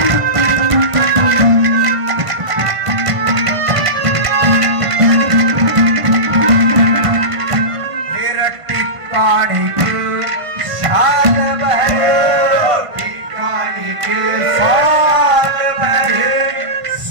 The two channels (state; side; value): late; left; 1.5 ms